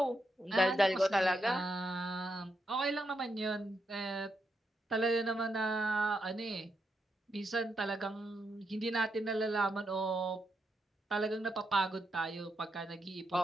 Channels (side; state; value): both; normal; correlation 0.82